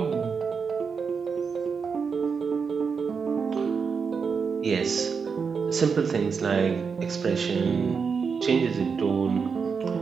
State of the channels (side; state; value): left; quieter; 5.7 dB